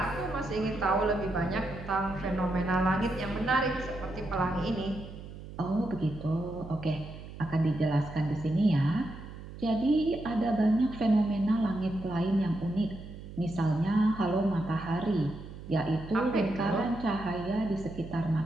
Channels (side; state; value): right; noise; hum, 13 dB below the sound